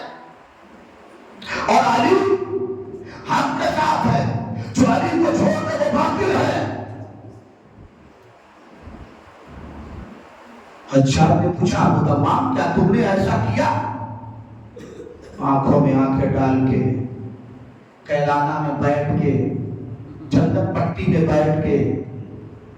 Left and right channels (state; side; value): identical; both; correlation 1.00